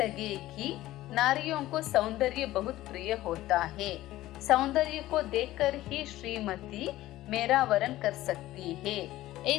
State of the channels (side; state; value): right; quieter; 15.8 dB